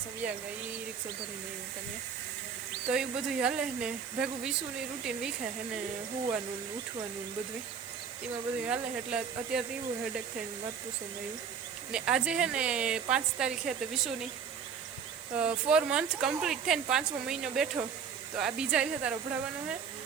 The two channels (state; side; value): quieter; left; 6.8 dB